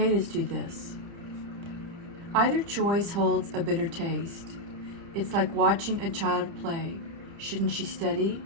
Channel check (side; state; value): left; late; 30 ms